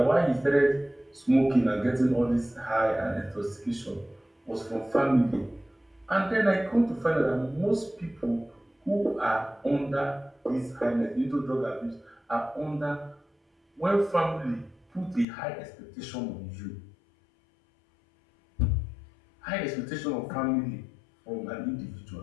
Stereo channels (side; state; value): right; drops out; at 15.2 s